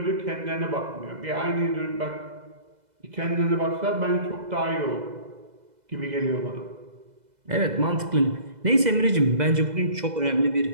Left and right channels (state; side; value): late; left; 2.0 ms